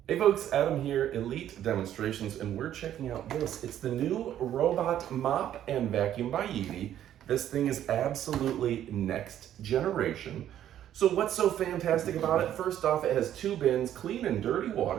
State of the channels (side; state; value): left; quieter; 11.2 dB